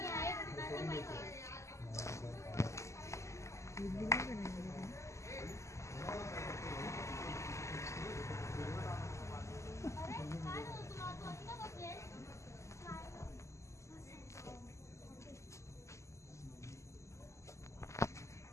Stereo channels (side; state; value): right; late; 0.14 ms